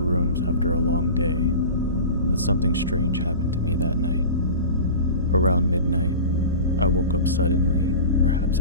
after a long day, but something strange happened to me that night. Around midnight, I woke up suddenly, perhaps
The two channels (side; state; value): both; inverted; correlation -0.34